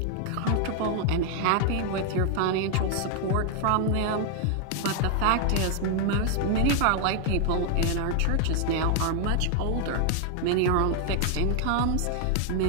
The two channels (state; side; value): different; both; correlation 0.00